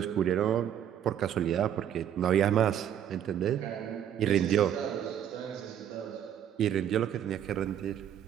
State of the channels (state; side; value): quieter; left; 9.9 dB